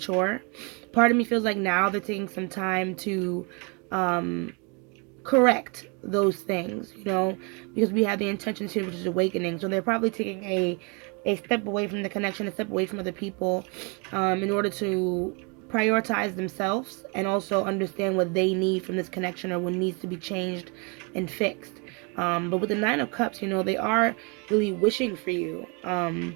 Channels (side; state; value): left; quieter; 32.3 dB